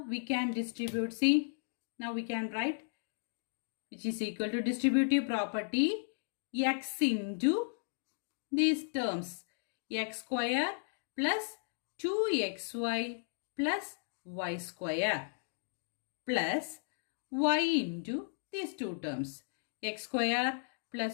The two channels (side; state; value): right; silent; digital silence